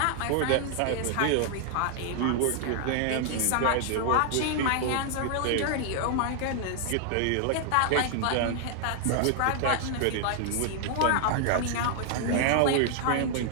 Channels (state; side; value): different; both; correlation 0.00